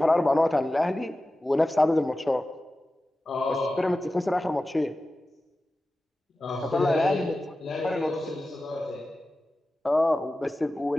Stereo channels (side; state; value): both; normal; correlation 0.95